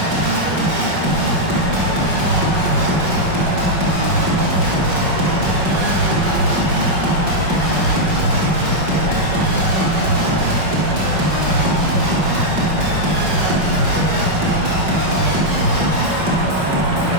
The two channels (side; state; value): left; late; 5.4 ms